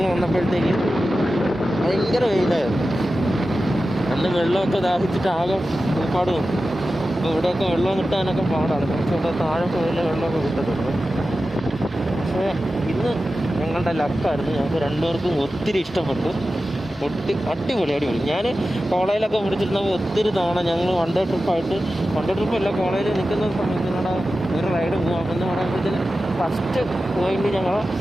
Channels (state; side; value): normal; both; correlation 0.93